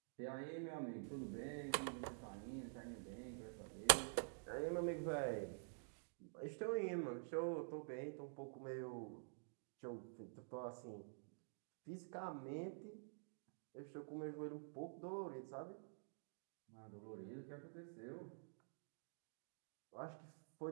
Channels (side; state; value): left; silent; digital silence